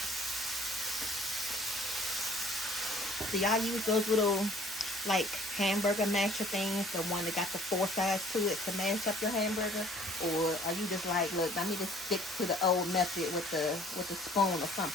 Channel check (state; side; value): normal; both; correlation 0.54